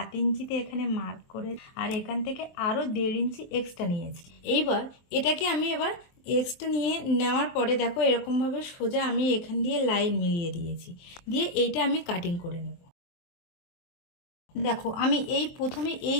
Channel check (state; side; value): late; right; 23 ms